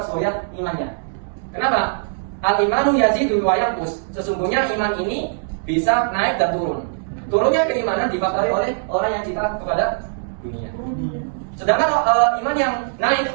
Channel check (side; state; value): left; silent; digital silence